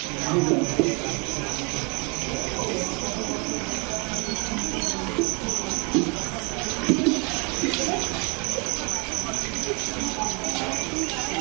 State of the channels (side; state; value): left; quieter; 31.6 dB